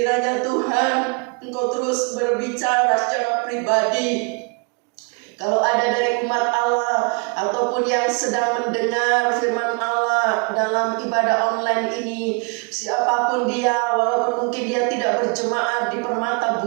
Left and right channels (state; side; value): quieter; left; 32.7 dB